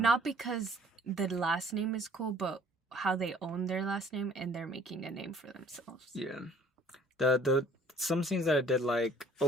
because the last name is cool, but how they own their last name and they're making a name for themselves. Yeah. The some scenes that I did like,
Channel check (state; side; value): normal; both; correlation 0.56